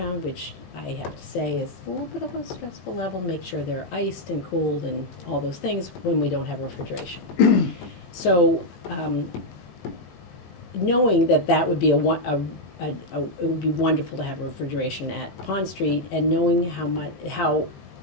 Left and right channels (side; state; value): right; late; 21 ms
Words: which I have to say is a little bit of a stressful level, make sure they're iced and cooled and all those things when we don't have refrigeration. So, knowing that would be it would be wonderful to have refrigeration at Pond Street, and knowing how